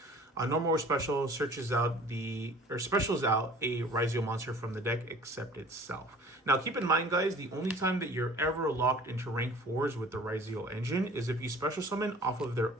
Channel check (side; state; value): both; normal; correlation 0.47